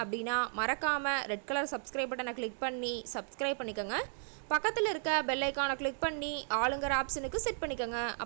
அப்படின்னா மறக்காமல் ரெட் கலர் சப்ஸ்கிரைப் பட்டனை கிளிக் பண்ணி சப்ஸ்கிரைப் பண்ணிக்கோங்க. பக்கத்தில் இருக்க பெல் ஐக்கானை கிளிக் பண்ணி ஆளுங்கிற ஆப்ஷனுக்கு செட் பண்ணிக்கோங்க.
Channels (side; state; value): left; silent; digital silence